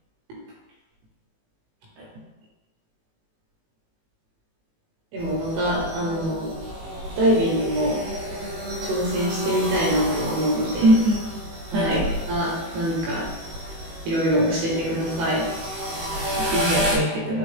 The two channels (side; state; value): left; late; 18 ms